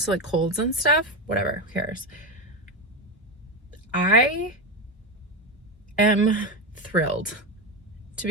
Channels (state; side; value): normal; both; correlation 0.14